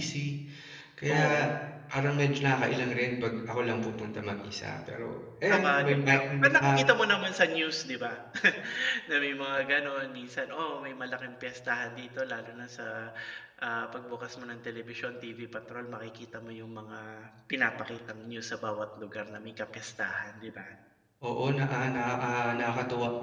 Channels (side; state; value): both; identical; correlation 1.00